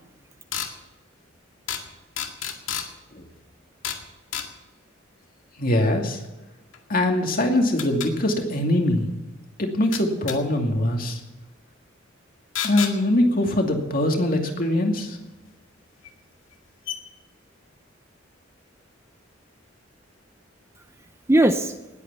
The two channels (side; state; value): both; normal; correlation 0.65